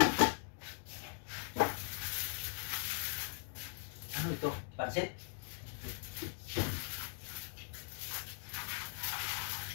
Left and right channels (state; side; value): silent; right; digital silence